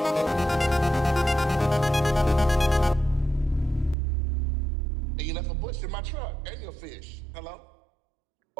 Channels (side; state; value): left; drops out; at 4.0 s